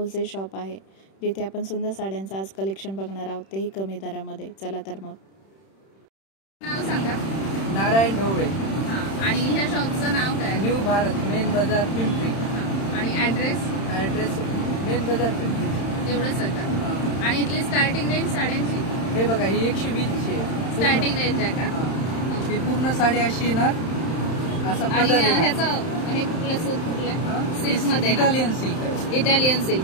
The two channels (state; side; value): late; right; 31 ms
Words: शॉप आहे, जिथे आपण सुंदर साड्यांचं आज कलेक्शन बघणार आहोत, तेही कमी दरामध्ये. चला तर मग. नाव सांगा. नारायण ढवळे. आणि ह्या शॉपचं नाव काय? न्यू भारत, मेन बाजार पिंपरी. आणि ॲड्रेस मेन बाजार पिंपरी. एवढंच आहे का? आणि इथली स्टार्टिंग रेंज साड्यांची? हे बघा, ही 120 ची स्टार्टिंग रेंज आहे का? ही पूर्ण साडी अशी येणार, असा पदर आणि येणार. ह्याचं हे कुठलं सूत कुठलं? सिल्क मध्ये इटालियन सिल्क.